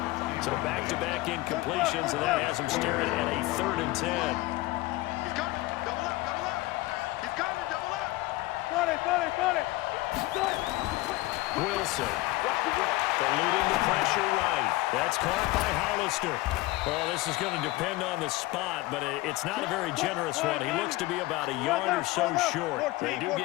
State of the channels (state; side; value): quieter; right; 19.7 dB